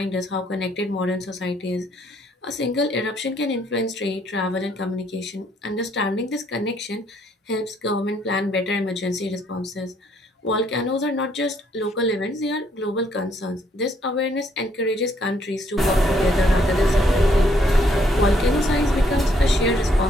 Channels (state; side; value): normal; both; correlation 0.69